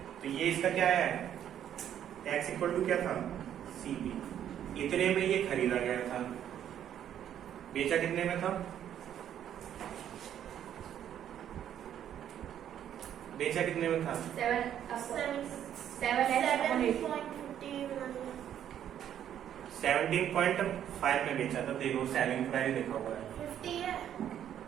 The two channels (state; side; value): quieter; left; 10.2 dB